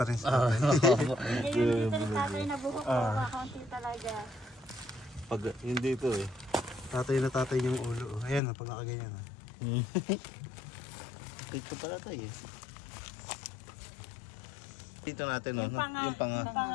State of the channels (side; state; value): right; drops out; at 8.4 s